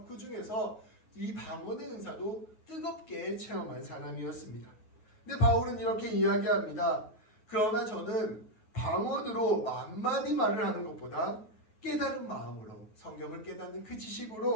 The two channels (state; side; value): late; right; 9.4 ms